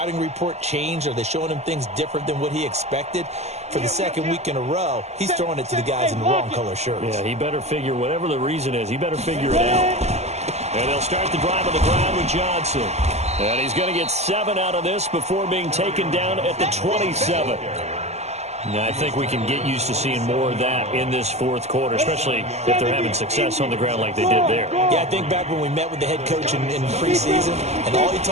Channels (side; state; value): left; late; 0.32 ms